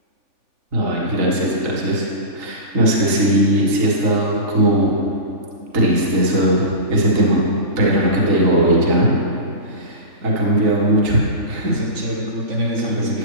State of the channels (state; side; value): late; left; 3.4 ms